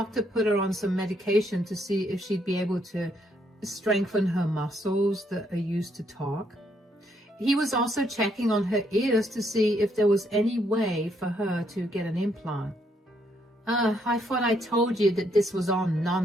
put her on some medication to see if she'd be able to strengthen her muscles that are used to talk. He was also checking on her ears to see if there was any way for her to get an implant. I thought I told you that this was all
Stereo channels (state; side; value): normal; both; correlation 0.73